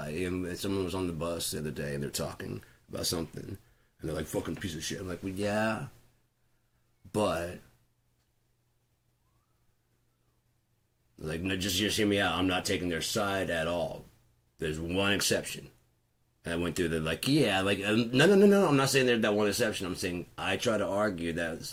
And someone was on the bus the other day and they're talking about something. And they're like, fucking piece of shit. I'm like, well, yeah. But, like, no, just hear me out. I'm not taking their side at all. There's one exception. And I went through the, like, yeah, like, no. I'm not saying there's that one exception. I'm saying I try to argue that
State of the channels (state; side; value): identical; both; correlation 1.00